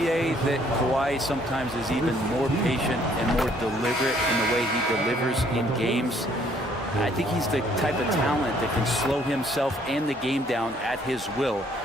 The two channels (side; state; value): both; normal; correlation 0.63